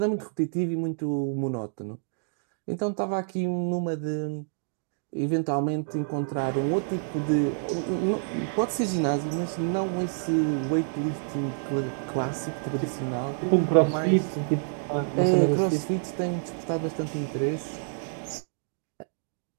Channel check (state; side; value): silent; left; digital silence